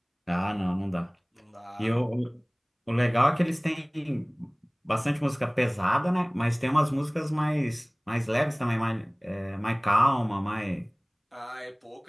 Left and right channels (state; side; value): identical; both; correlation 1.00